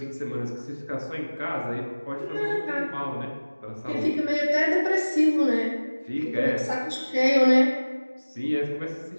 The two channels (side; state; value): both; inverted; correlation -1.00